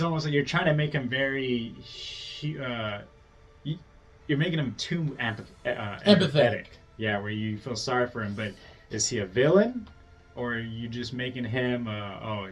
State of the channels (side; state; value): both; identical; correlation 1.00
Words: almost like you're trying to make him very, you're making him too empathetic. Yeah, where you feel sorry for him, but is he a villain? Or are you just making him,